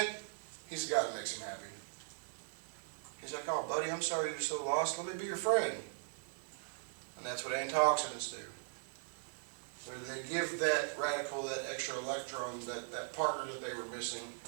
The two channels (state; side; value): silent; left; 52 dB below the other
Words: he's the guy that makes him happy. He's like, oh buddy, I'm sorry you're so lost. Let me be your friend. And that's what antioxidants do. They give that radical, that extra electron, that partner that they were missing.